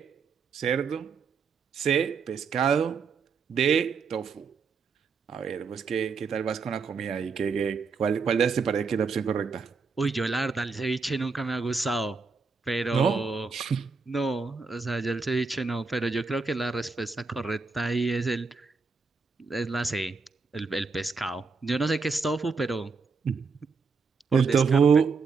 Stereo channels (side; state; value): left; quieter; 4.9 dB